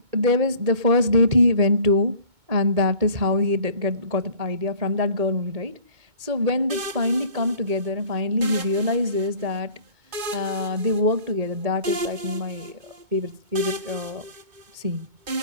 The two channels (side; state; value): left; late; 2.2 ms